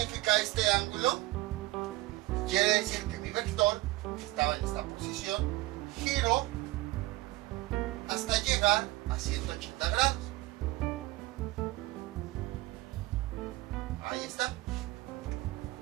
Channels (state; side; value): quieter; left; 19.3 dB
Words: este ángulo? Quiere decir que mi vector, que estaba en esta posición, giró hasta llegar a 180 grados. Ahí está.